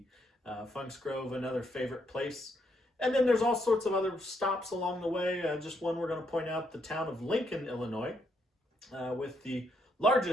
Funk's Grove, another favorite place. And then there's all sorts of other stops along the way. Just one we're going to point out, the town of Lincoln, Illinois, with the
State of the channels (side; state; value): both; normal; correlation 0.75